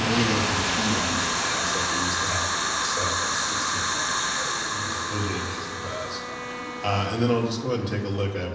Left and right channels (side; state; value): both; identical; correlation 1.00